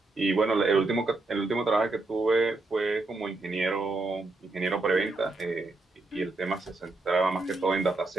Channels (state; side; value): quieter; left; 3.2 dB